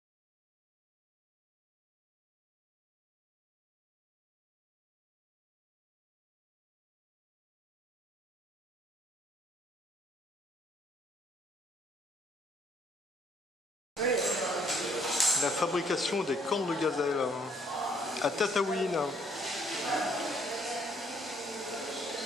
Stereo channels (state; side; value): normal; both; correlation 0.65